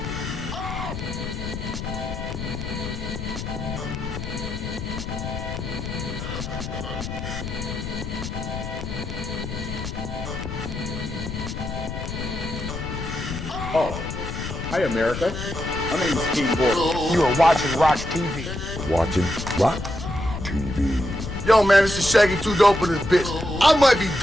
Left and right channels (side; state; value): left; noise; rumble, 6 dB below the sound